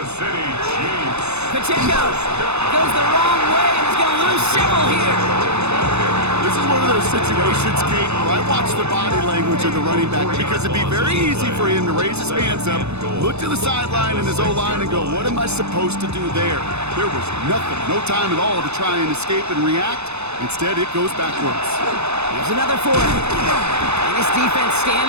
City Chiefs. Pacheco goes the wrong way and is going to lose several here. This is one of those situations, Kate, where I watch the body language of the running back because it'd be very easy for him to raise his hands up, look to the sideline in his O-line and go, what am I supposed to do there? There was nothing, no time at all to try and escape and react. Instead, it goes backwards. Here's another 4. And his defense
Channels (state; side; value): late; left; 0.81 ms